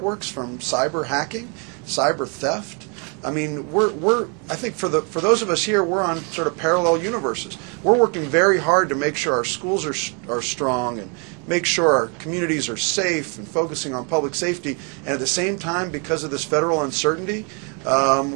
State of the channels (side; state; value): left; quieter; 36.0 dB